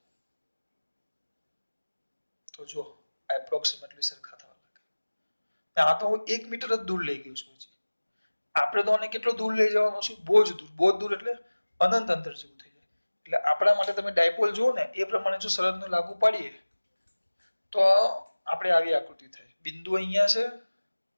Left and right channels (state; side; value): inverted; both; correlation -1.00